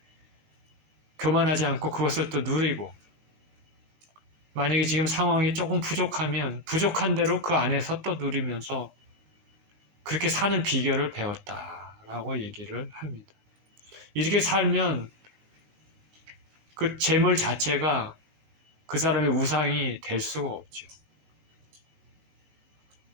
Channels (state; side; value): late; left; 19 ms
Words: 교만하지 않고 그것을 또 누리고 만약에 지금 상황이 조금 부족하면 부족한 대로 그 안에서 또 누리면서 그렇게 사는 비결을 배웠다라고 얘기를 합니다. 이렇게 살면 그 재물 자체가 그 사람의 우상이 될 수가 없죠.